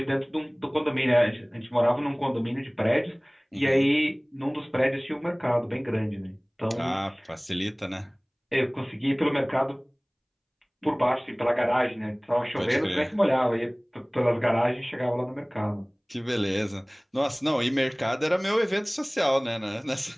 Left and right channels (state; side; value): identical; both; correlation 1.00